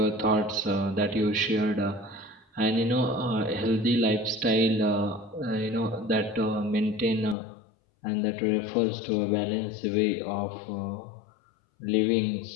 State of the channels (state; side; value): drops out; right; at 7.4 s